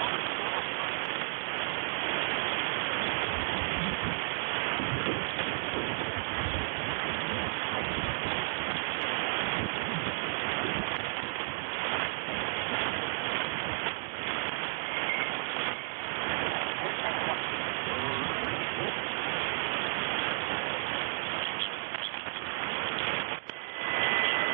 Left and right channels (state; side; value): silent; left; digital silence